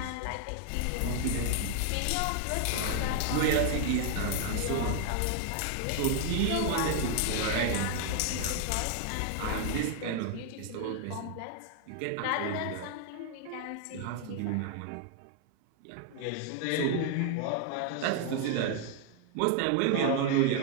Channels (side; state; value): both; different; correlation 0.00